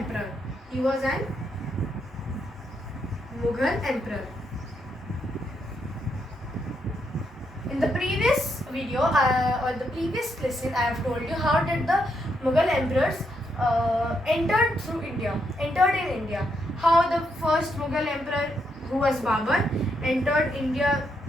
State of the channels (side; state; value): both; normal; correlation 0.78